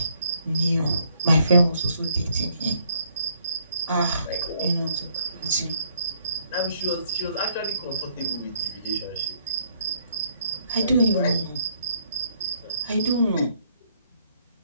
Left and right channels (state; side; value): inverted; both; correlation -0.66